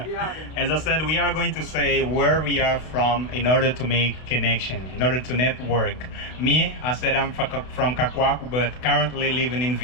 As I said, we are going to say where we are from in order to make connection, in order to network. Me, I said I'm from Cacoaco, but currently living in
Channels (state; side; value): late; right; 32 ms